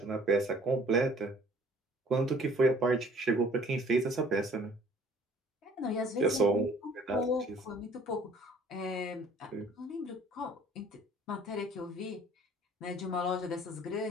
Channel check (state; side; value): normal; both; correlation 0.55